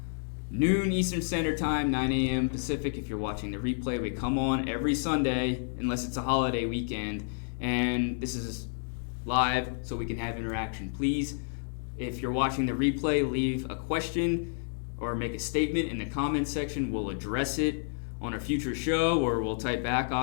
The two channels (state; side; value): silent; right; digital silence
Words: noon Eastern Standard Time, 9 a.m. Pacific. If you're watching the replay, we come on every Sunday, unless it's a holiday weekend. And this is live, so we can have interaction. Please, if you're watching the replay, leave a question or make a statement in the comments section. We'll address it on a future show, or we'll type back.